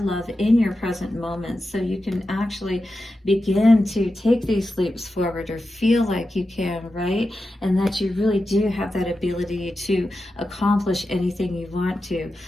love in your present moments. So you can actually begin to take these leaps forward, or feel like you can, right? And that you really do have that ability to accomplish anything you want to.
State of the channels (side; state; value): both; normal; correlation 0.91